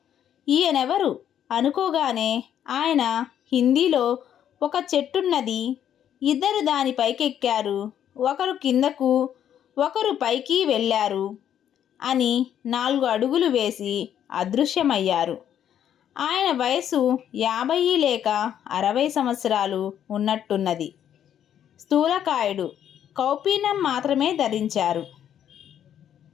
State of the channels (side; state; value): right; quieter; 9.9 dB